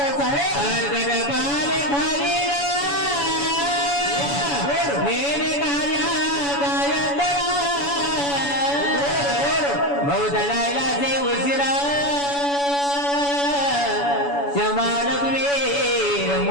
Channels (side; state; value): right; late; 7.0 ms